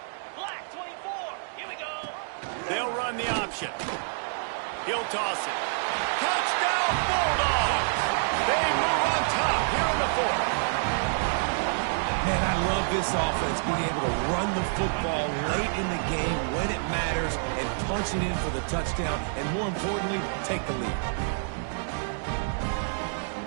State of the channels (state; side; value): silent; left; digital silence